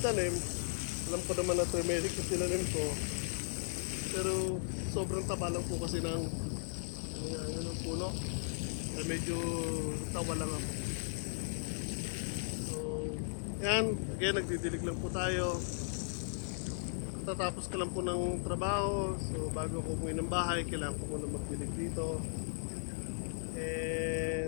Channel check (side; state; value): right; silent; digital silence